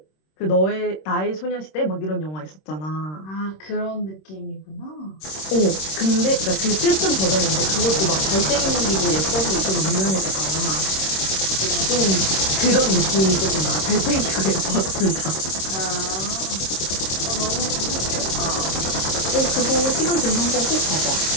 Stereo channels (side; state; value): right; late; 26 ms